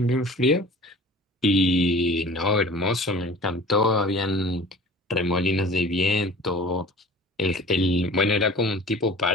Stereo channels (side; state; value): both; normal; correlation 0.43